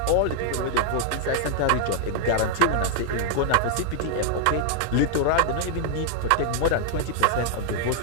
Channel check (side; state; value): both; different; correlation 0.00